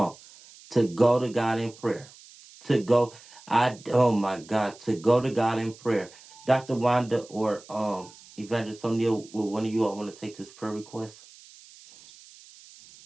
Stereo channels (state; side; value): noise; right; hiss, 22 dB below the sound